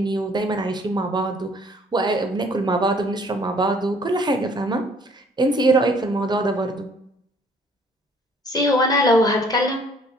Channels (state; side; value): normal; both; correlation 0.59